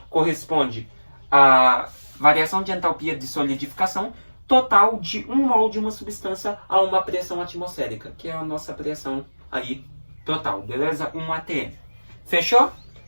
corresponde à variação de entalpia de solidificação total de 1 mol de uma substância a uma pressão atmosférica, que é a nossa pressão aí total, beleza? 1 atm. Fechou?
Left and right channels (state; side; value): inverted; both; correlation -1.00